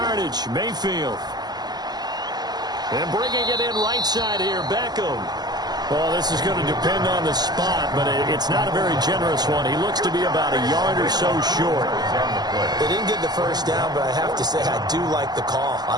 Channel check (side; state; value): left; late; 0.20 ms